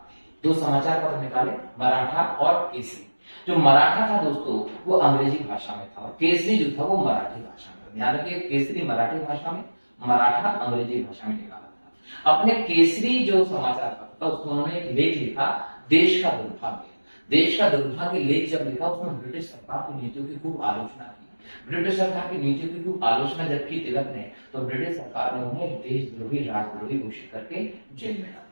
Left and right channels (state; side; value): inverted; both; correlation -1.00